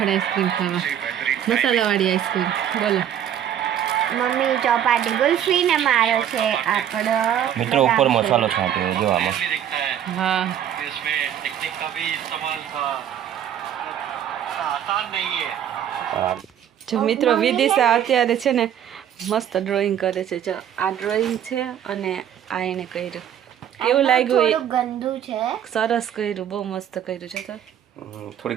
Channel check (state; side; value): quieter; left; 10.0 dB